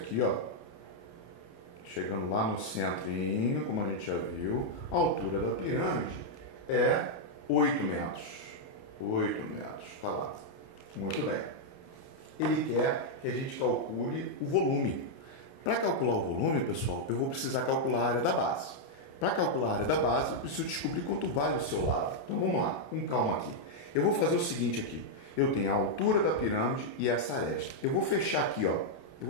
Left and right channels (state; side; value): late; right; 29 ms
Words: ó. Chegando lá no centrinho, como a gente já viu, a altura da pirâmide é 8 metros. 8 metros, tá lá. Muito bem. Ele quer que a gente calcule o volume. Para calcular o volume, pessoal, eu vou precisar calcular a área da base. Para calcular a área da base, eu preciso descobrir quanto vale o seu lado. Então vamos lá, com calma aqui. Eu vou fazer o seguinte aqui. Eu tenho a altura da pirâmide e essa aresta. Eu vou fechar aqui, ó.